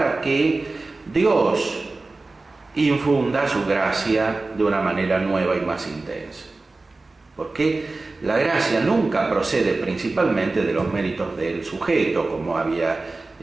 que Dios infunda su gracia de una manera nueva y más intensa. Porque la gracia nunca procede principalmente de los méritos del sujeto, como había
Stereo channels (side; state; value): left; quieter; 3.4 dB